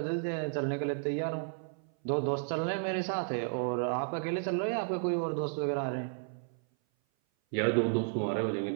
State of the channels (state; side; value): silent; left; 56 dB below the other